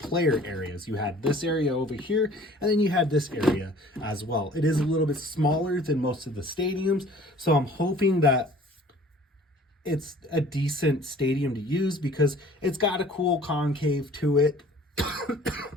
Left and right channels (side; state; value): both; normal; correlation 0.50